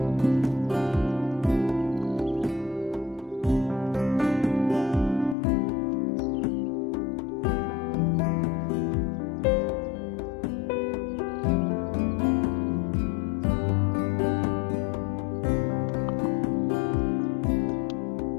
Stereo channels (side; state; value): right; drops out; at 5.4 s